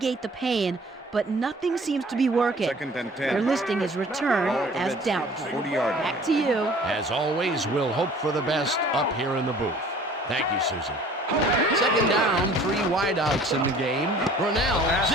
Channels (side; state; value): both; normal; correlation 0.50